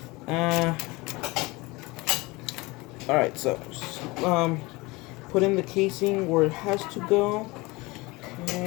All right, so put in the casing where it has to go.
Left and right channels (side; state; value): right; quieter; 23.3 dB